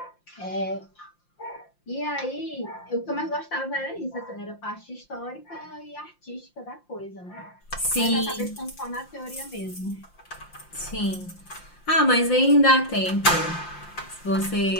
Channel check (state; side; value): late; right; 5.7 ms